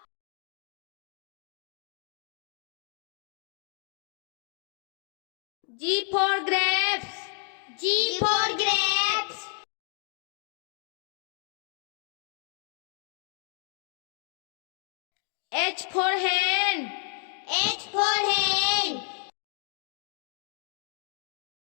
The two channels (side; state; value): right; silent; 56 dB below the other